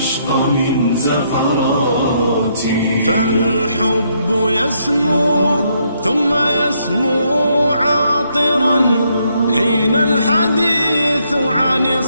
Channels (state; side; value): inverted; both; correlation -0.73